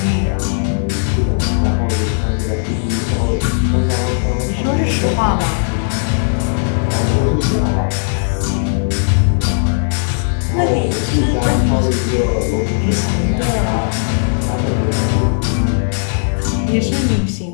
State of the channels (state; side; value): silent; right; 62 dB below the other